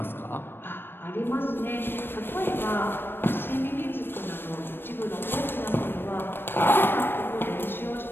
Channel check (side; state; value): right; late; 0.099 ms